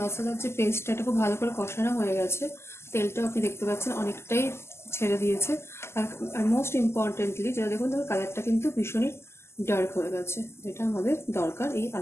মশলার যে পেস্টটা খুব ভালো করে কষানো হয়ে গেছে, তেলটাও আপনি দেখতে পাচ্ছেন অনেকটাই ছেড়ে দিয়েছে। আর মোস্ট ইম্পর্টেন্টলি যেটা দেখুন, ধরুন কালারটা কিন্তু ভীষণই ডার্ক হয়ে গেছে, যেটা আমাদের দরকার এই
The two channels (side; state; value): right; late; 0.12 ms